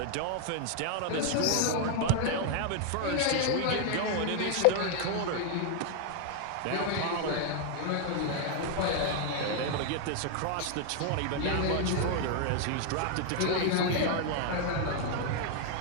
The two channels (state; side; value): different; both; correlation 0.00